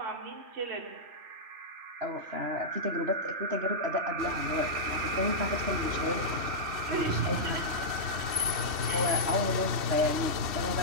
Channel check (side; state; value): left; late; 3.1 ms